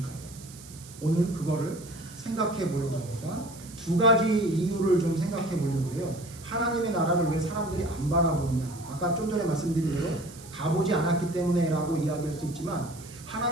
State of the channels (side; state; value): right; noise; hiss, 18 dB below the sound